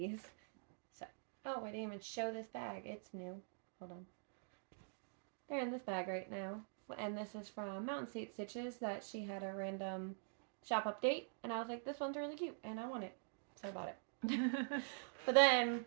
So, oh, I didn't even show this bag. It's new. Hold on. They're in this bag right now. And this is from Mountain State Stitches that she had a random shop update. And I was like, this one's really cute and I want it. So I bought it. But then,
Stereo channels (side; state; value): left; silent; digital silence